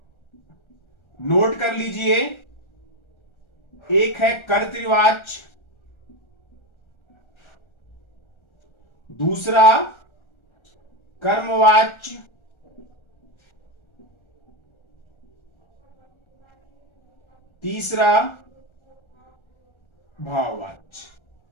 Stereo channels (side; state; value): right; late; 1.3 ms